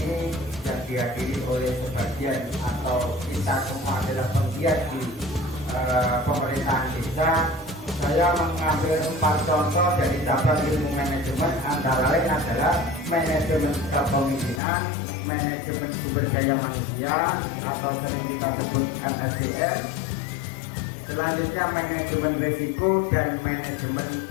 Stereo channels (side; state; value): right; drops out; at 14.6 s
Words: yang dihadiri oleh sebagian atau kita semua adalah penggiat di pemerintahan desa. Saya mengambil 4 contoh dari cabang ilmu manajemen, antara lain adalah manajemen kepemimpinan, manajemen sumber daya manusia atau sering kita sebut MSDM. Selanjutnya manajemen risiko dan manajemen